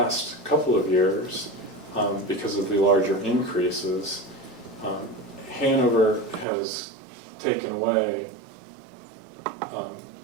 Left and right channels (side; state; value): left; drops out; at 6.5 s